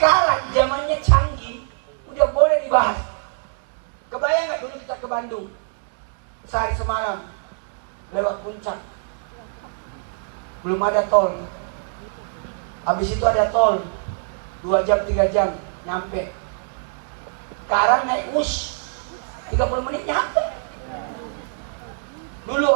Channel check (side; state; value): left; silent; digital silence